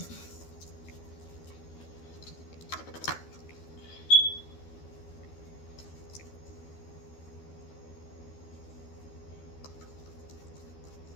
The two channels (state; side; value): late; right; 13 ms